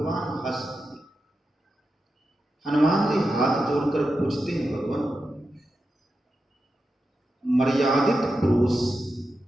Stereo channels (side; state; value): both; normal; correlation 0.89